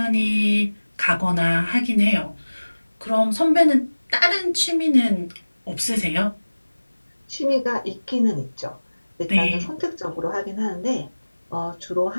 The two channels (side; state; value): both; inverted; correlation -1.00